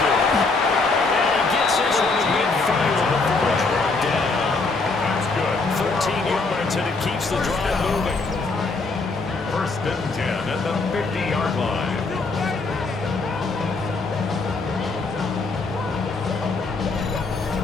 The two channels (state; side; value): quieter; right; 3.8 dB